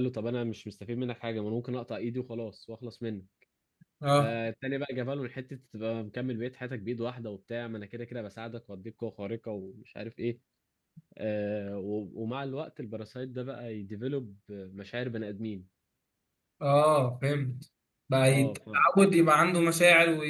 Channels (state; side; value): identical; both; correlation 1.00